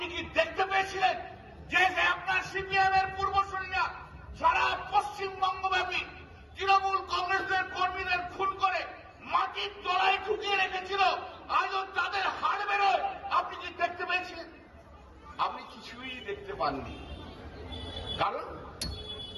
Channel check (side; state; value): both; identical; correlation 1.00